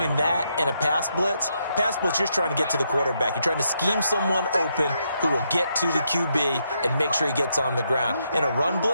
that and a pass blitz, you're just trying to get to the quarterback. You're trying to scheme someone open who will get to the QB and make sure he gets on the ground. In a run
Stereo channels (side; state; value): both; inverted; correlation -0.79